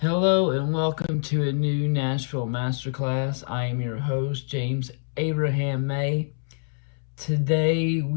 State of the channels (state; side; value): silent; right; 61 dB below the other